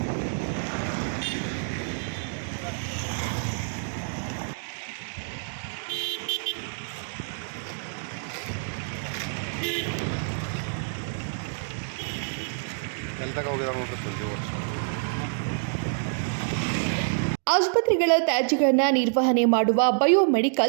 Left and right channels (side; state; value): left; silent; digital silence